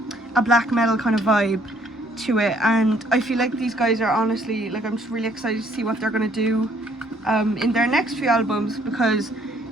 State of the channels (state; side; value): normal; both; correlation 0.64